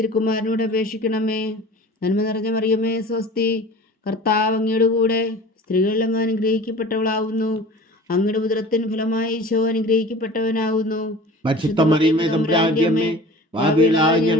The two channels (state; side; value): normal; both; correlation 0.40